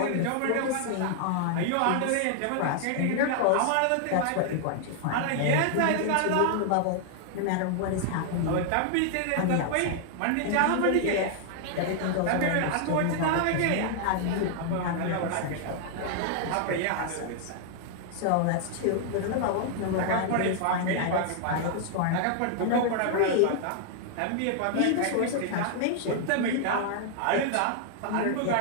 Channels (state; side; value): different; both; correlation 0.00